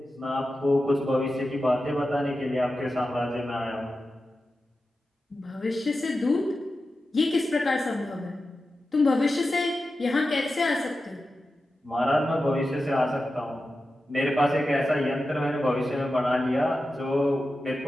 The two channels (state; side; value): normal; both; correlation 0.92